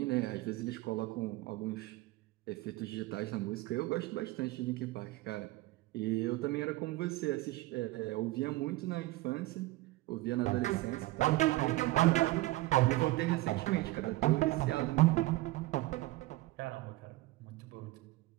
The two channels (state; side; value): quieter; left; 18.9 dB